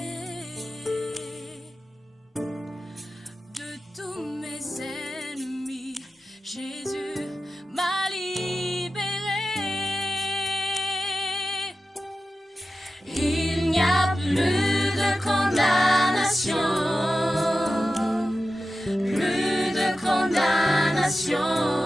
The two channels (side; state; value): both; normal; correlation 0.93